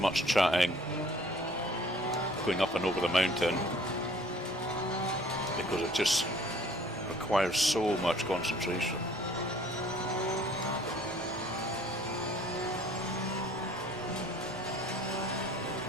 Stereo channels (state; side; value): normal; both; correlation 0.54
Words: chatting going up and over the mountain because it just requires so much concentration.